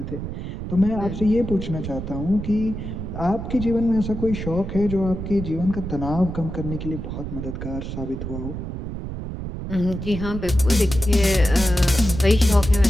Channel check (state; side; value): noise; right; rumble, 6 dB below the sound